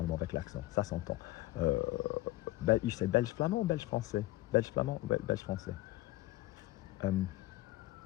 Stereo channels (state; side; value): quieter; right; 17.7 dB